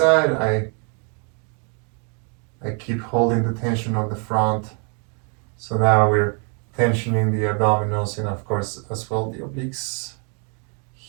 I keep holding the tension on the front. So now we're tensioning the abdominals and of course as well the obliques.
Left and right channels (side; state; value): left; quieter; 38.7 dB